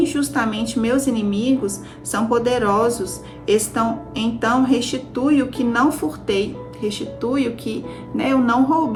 meus inimigos, são poderosos. Então restitui o que não furtei, restitui o que eu não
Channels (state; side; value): identical; both; correlation 1.00